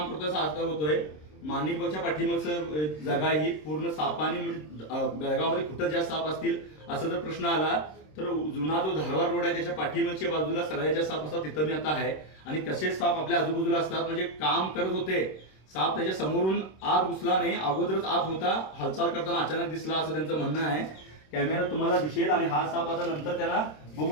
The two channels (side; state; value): right; late; 26 ms